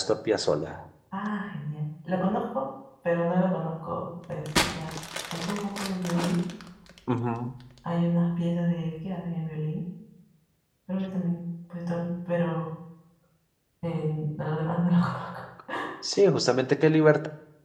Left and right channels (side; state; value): both; identical; correlation 1.00